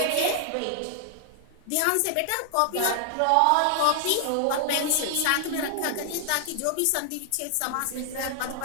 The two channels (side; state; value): both; different; correlation 0.00